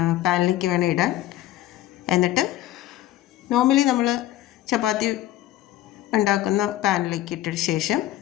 പാനിലേക്ക് വേണം ഇടാൻ. എന്നിട്ട് നോർമലി നമ്മൾ ചപ്പാത്തി ഉണ്ടാക്കുന്ന പാനിലേക്ക് ഇട്ട ശേഷം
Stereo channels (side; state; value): right; quieter; 13.9 dB